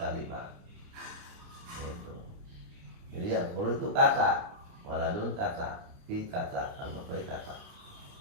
Itu. Jadi yang perlu itu kata, waladun kata, fi kata, al-matbahi kata.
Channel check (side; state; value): left; late; 29 ms